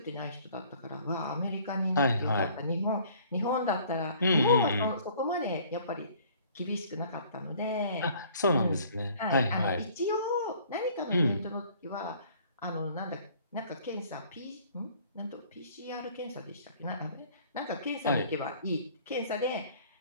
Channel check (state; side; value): inverted; both; correlation -0.54